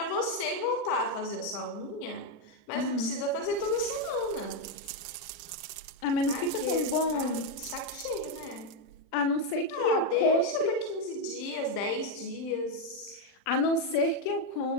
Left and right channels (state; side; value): late; right; 39 ms